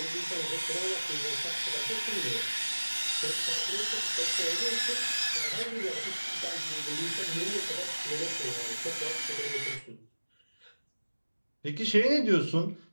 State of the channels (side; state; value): both; inverted; correlation -1.00